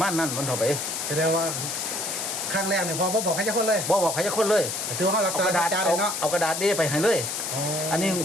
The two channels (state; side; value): noise; left; hiss, 3 dB below the sound